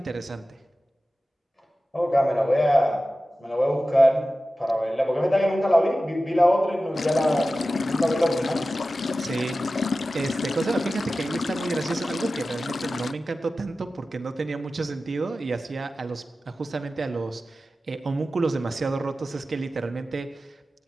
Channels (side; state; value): both; normal; correlation 0.95